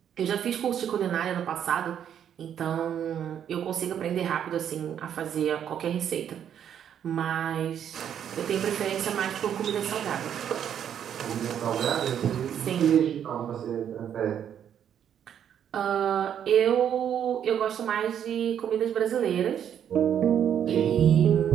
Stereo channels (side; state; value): left; quieter; 9.2 dB